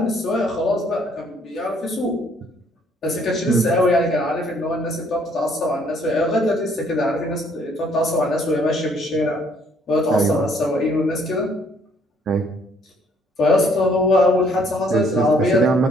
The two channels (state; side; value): normal; both; correlation 0.64